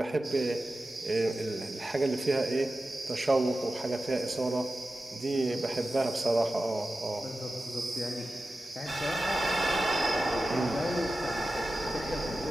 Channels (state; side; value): normal; both; correlation 0.94